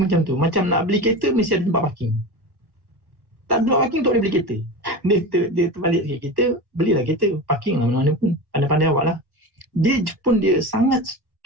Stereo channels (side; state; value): left; late; 1.1 ms